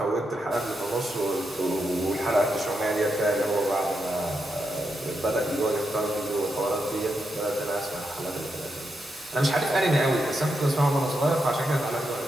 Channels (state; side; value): normal; both; correlation 0.84